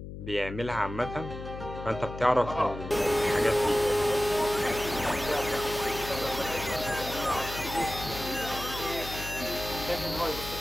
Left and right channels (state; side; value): noise; left; hum, 10 dB below the sound